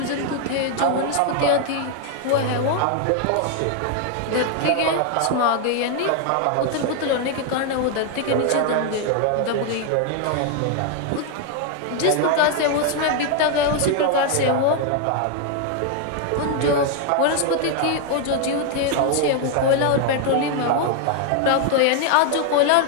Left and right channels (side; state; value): both; different; correlation 0.01